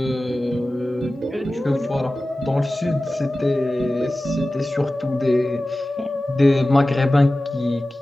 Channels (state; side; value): normal; both; correlation 0.96